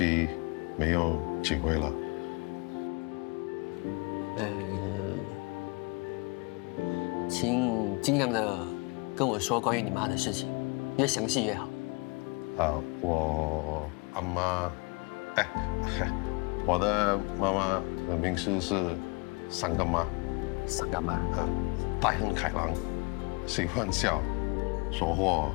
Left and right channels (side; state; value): right; quieter; 30.3 dB